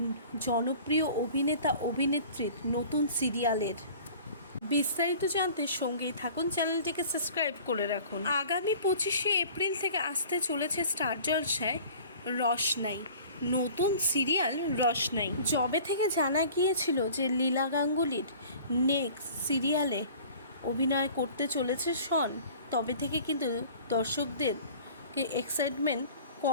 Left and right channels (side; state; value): both; inverted; correlation -0.46